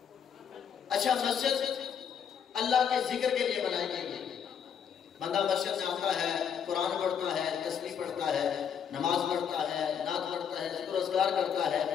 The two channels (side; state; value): right; quieter; 7.8 dB